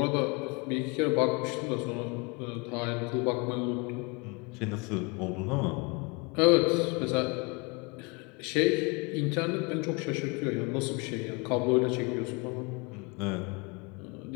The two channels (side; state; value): right; quieter; 29.8 dB